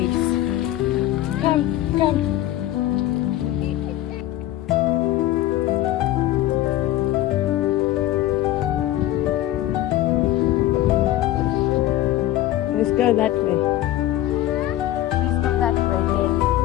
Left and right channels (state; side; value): quieter; right; 14.4 dB